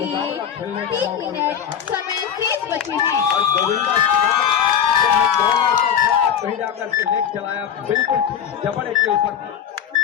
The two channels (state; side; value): quieter; right; 8.6 dB